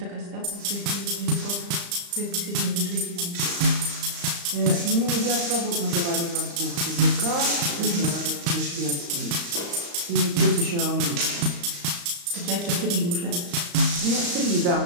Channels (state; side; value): late; left; 35 ms